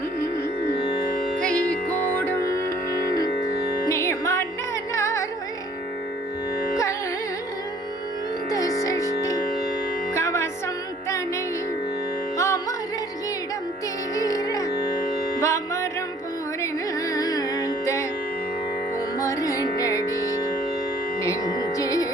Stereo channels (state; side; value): normal; both; correlation 0.57